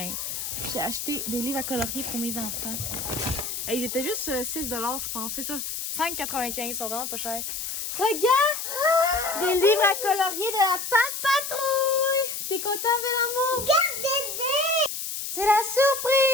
j'ai acheté des livres à colorier pour mes enfants. Et ils étaient juste 6 $, je pense, c'est ça. 5,95 $, ils sont vraiment pas chers. Regarde! Des livres à colorier de la Pat' Patrouille! T'es content, bel amour? C'est la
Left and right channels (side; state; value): left; noise; hiss, 5 dB below the sound